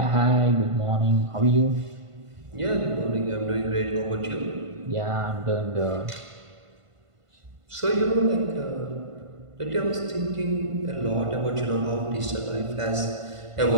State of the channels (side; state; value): left; late; 1.5 ms